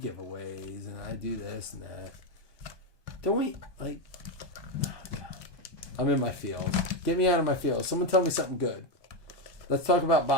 and I do this and that. Don't we like? Oh God. I'm in my field. Get me out of my field. Someone tell me something good. Let's talk about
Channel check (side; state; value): right; late; 1.2 ms